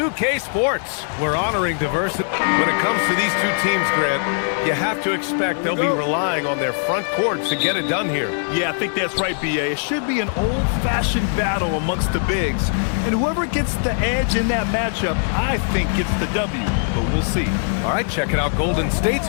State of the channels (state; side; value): silent; right; 65 dB below the other